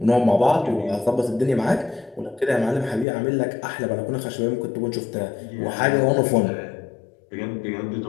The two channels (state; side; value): drops out; right; at 3.1 s